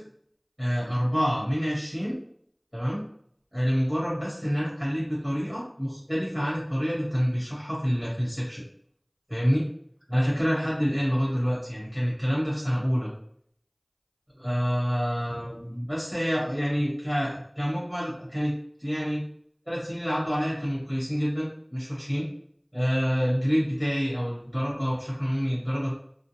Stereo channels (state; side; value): identical; both; correlation 1.00